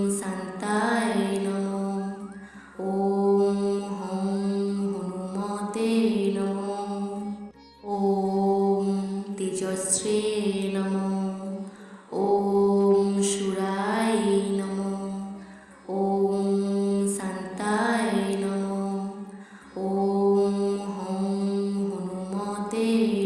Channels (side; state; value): both; identical; correlation 1.00